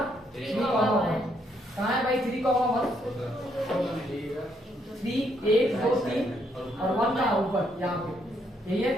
3,1 कहाँ है भाई 3,1, 3 1 2 3 और 1 का ऊपर यहाँ पे, यही है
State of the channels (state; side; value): normal; both; correlation 0.73